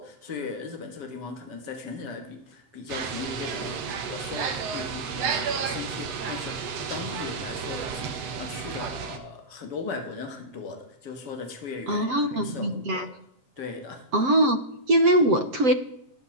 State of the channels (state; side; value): late; left; 8.0 ms